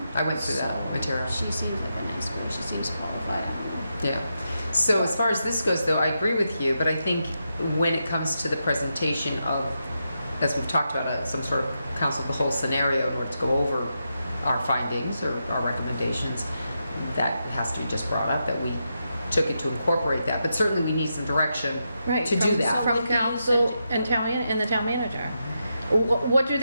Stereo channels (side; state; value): both; inverted; correlation -0.85